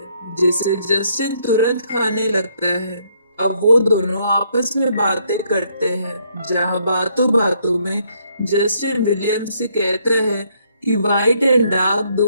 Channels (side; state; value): both; inverted; correlation -0.70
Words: जिसे जस्टिन तुरंत खाने लगता है। अब वो दोनों आपस में बातें करते हैं, जहाँ बातों बातों में जस्टिन विलियम से कहता है कि व्हाइट एंड डार्क